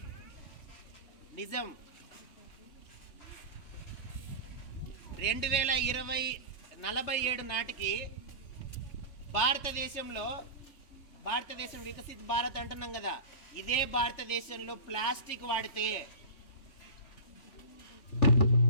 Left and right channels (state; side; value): late; right; 3.2 ms